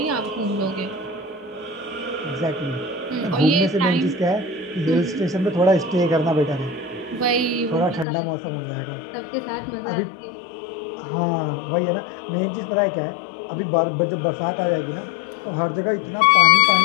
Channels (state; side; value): drops out; right; at 8.1 s